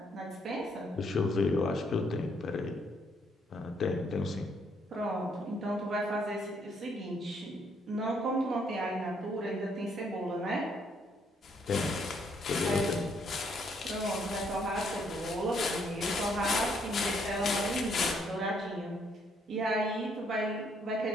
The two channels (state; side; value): normal; both; correlation 0.70